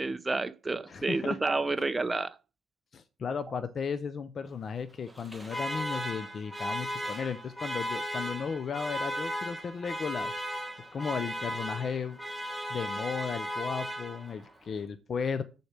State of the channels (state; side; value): normal; both; correlation 0.85